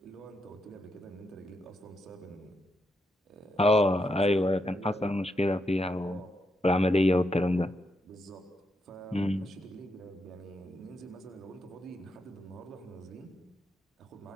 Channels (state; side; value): normal; both; correlation 0.82